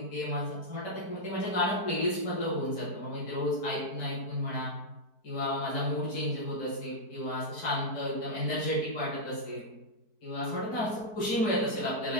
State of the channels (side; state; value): right; late; 4.6 ms